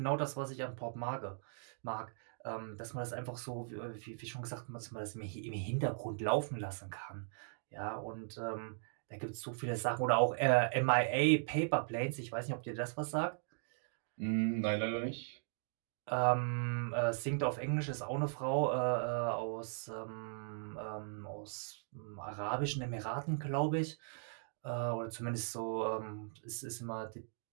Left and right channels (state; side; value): silent; left; digital silence